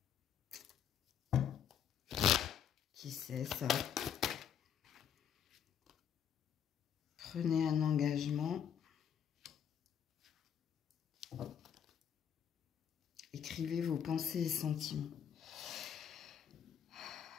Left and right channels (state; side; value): quieter; right; 8.7 dB